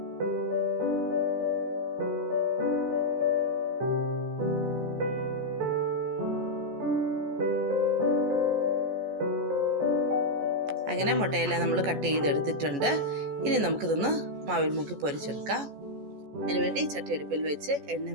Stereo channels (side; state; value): left; late; 14 ms